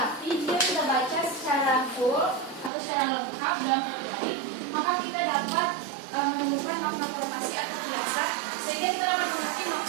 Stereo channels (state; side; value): drops out; left; at 2.7 s